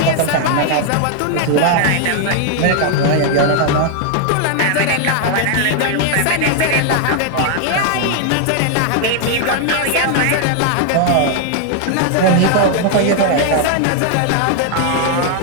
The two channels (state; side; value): different; both; correlation 0.00